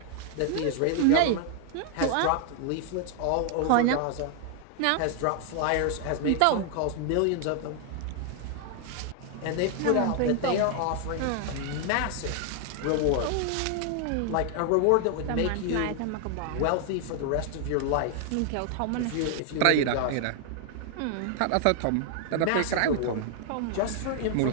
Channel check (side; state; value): both; different; correlation 0.00